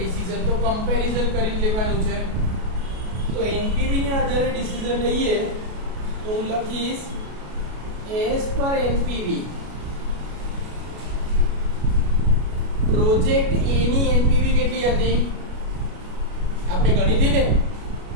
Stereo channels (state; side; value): late; left; 33 ms